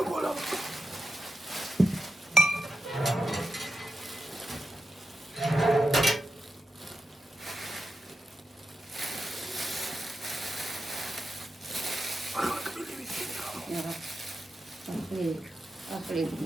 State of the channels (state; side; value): normal; both; correlation 0.88